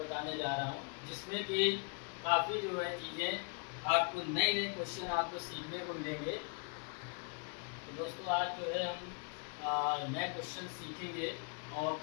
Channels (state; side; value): quieter; right; 37.2 dB